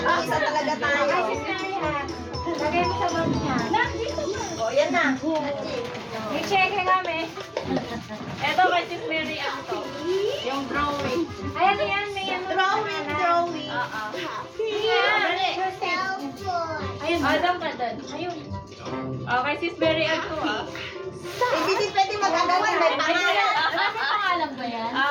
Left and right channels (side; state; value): both; identical; correlation 1.00